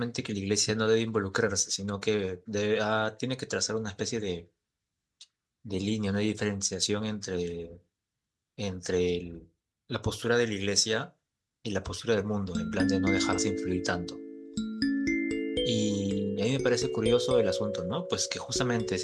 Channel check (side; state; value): both; identical; correlation 1.00